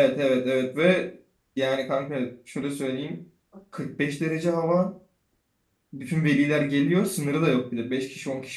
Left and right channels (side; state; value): both; identical; correlation 1.00